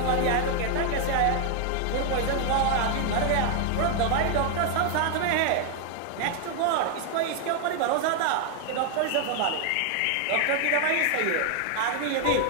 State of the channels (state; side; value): different; both; correlation 0.00